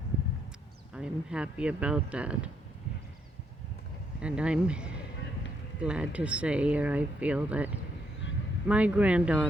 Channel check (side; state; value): both; normal; correlation 0.75